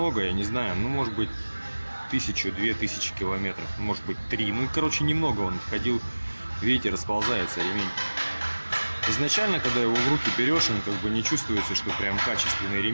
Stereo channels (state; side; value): inverted; both; correlation -1.00